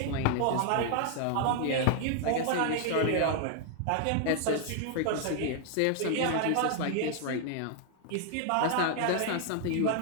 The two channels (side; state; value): both; different; correlation 0.00